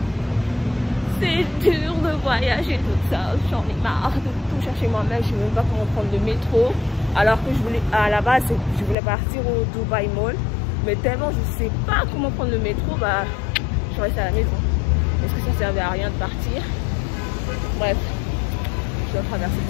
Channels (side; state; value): right; drops out; at 9.0 s